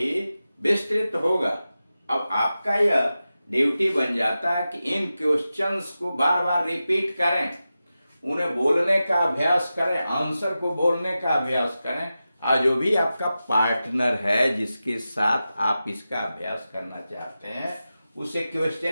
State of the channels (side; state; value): both; inverted; correlation -0.93